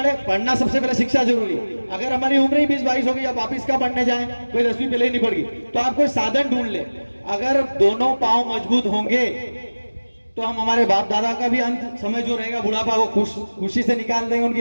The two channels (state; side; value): inverted; both; correlation -1.00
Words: पढ़ना सबसे पहले शिक्षा जरूरी। अगर हमारी उम्र ही 20-22 हो गई, अब वापिस का पढ़ने जाए, कोई 10वीं पहले ही नहीं पड़ गई, तो आप कोई साधन ढूंढ ले। अगर दोनों पांव मजबूत होंगे तो हम हमारे बाप दादा का भी अंत समय जो रहेगा बुढ़ापा वो खुशी से निकाल देंगे,